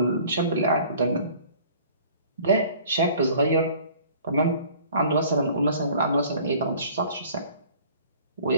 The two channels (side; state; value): both; inverted; correlation -0.50